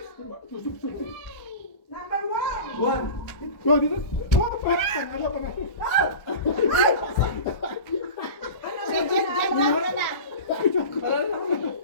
Number 1. Oh, dito. Oh, panalo pa na. Ay!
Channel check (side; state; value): right; late; 1.4 ms